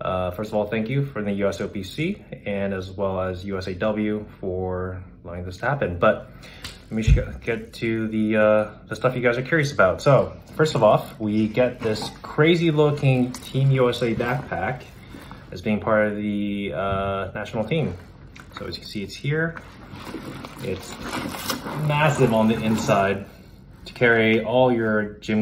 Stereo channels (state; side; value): identical; both; correlation 1.00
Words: First of all, thank you for the USOPC and as well as USAW for allowing this to happen. But let me get to the stuff you guys are curious about. So first of all, we get this crazy looking Team USA backpack as being part of the national team. So as you can see, it's here. It's massive on the inside to carry all your